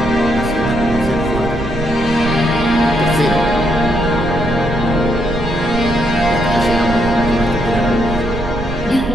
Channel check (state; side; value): noise; right; rumble, 8 dB below the sound